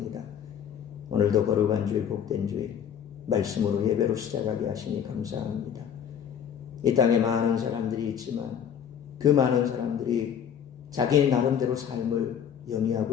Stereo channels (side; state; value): right; quieter; 8.5 dB